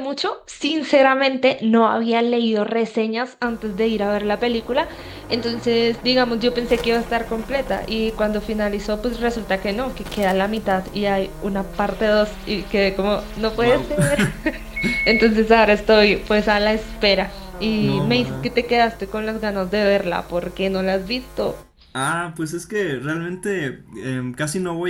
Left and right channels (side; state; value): both; identical; correlation 1.00